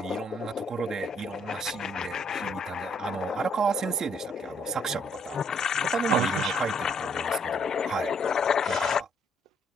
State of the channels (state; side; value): normal; both; correlation 0.67